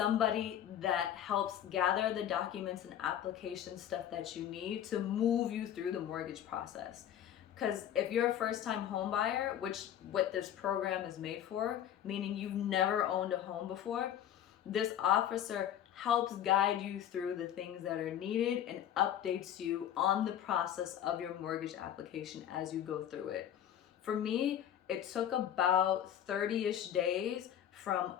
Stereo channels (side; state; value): right; quieter; 10.5 dB